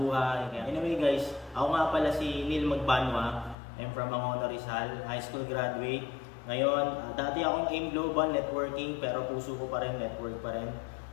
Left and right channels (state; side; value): drops out; right; at 3.6 s